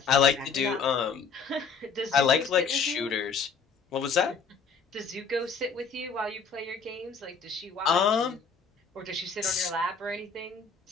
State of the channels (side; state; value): right; quieter; 5.5 dB